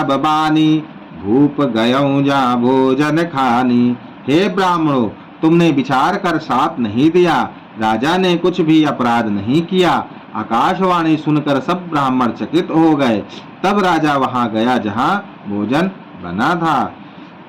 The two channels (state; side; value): identical; both; correlation 1.00